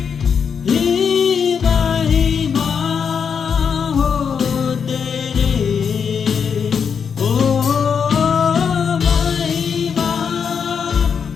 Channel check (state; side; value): quieter; right; 6.7 dB